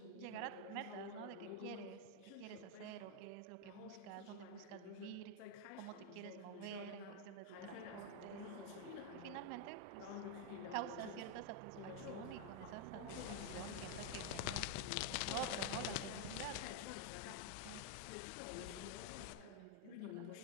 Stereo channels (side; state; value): both; different; correlation 0.01